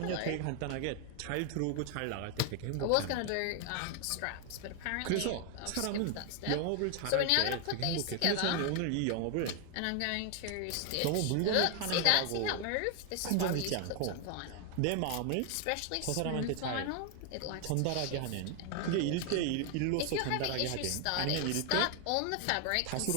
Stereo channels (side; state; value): both; different; correlation 0.00